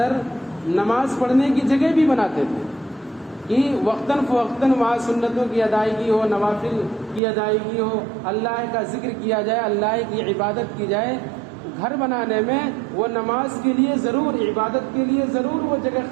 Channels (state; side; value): drops out; left; at 7.2 s